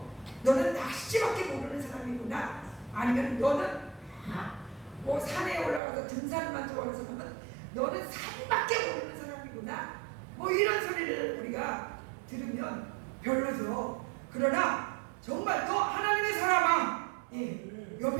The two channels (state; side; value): drops out; left; at 5.8 s